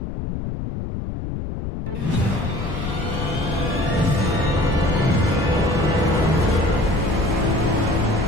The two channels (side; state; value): left; noise; rumble, 5 dB below the sound